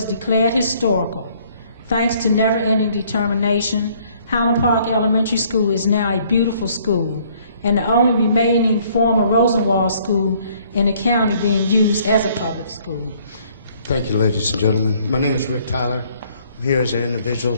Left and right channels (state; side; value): inverted; both; correlation -0.62